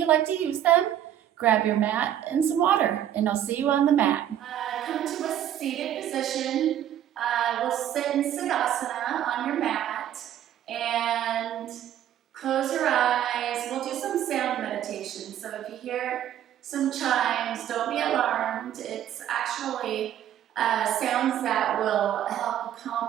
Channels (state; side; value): quieter; left; 11.0 dB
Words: like to use them. Grab your mat and some water, and I'll see you on the mat. Come to a seated position. We'll sit in Siddhasana on your mat. And close your eyes. We'll do some sound meditation. So if you hear some chimes, don't be alarmed. It's actually sounds that will help